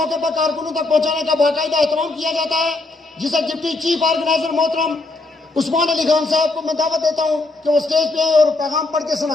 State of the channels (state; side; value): quieter; right; 3.3 dB